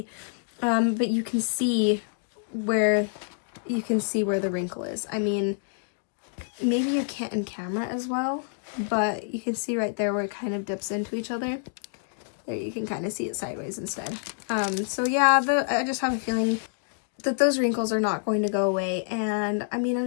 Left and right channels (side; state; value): right; silent; digital silence